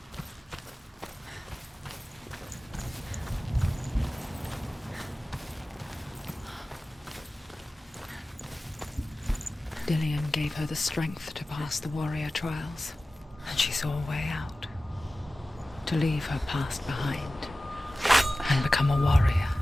Dillion gave her the strength to pass the warrior trials, and she saw a way out. To leave her past behind and become a warrior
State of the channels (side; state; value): both; normal; correlation 0.96